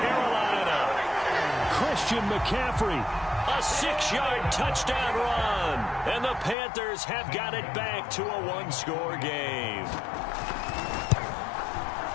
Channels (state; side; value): drops out; right; at 6.6 s